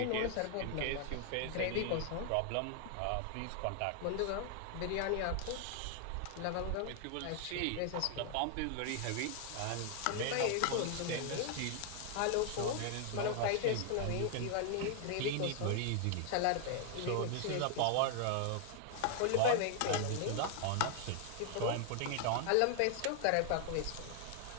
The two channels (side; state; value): both; different; correlation 0.00